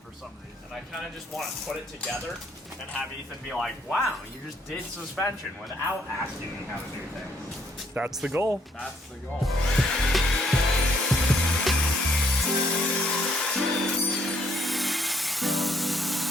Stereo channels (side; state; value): both; normal; correlation 0.68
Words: some reason. I kind of just want to put it together and have Ethan be like, "Wow, you just did suspension without asking me how to do things." That's the goal. That's the goal.